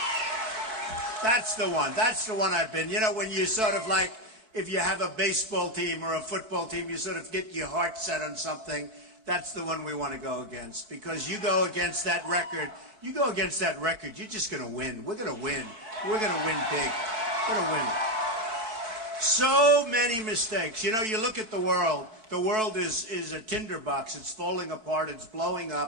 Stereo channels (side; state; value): left; late; 4.6 ms